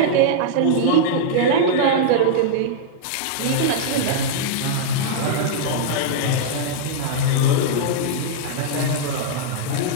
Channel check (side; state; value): both; different; correlation -0.02